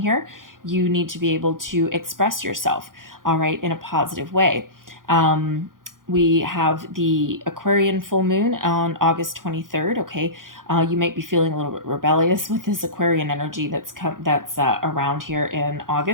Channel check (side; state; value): left; late; 0.90 ms